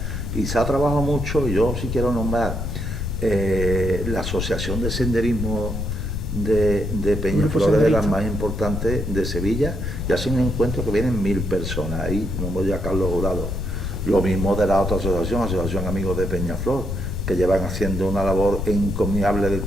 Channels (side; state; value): left; noise; rumble, 3 dB below the sound